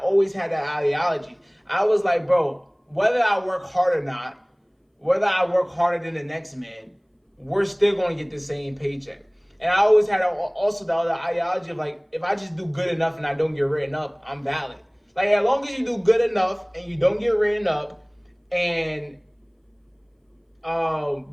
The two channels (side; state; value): both; identical; correlation 1.00